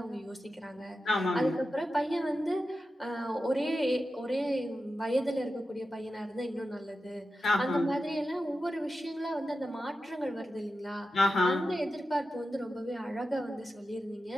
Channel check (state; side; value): normal; both; correlation 0.91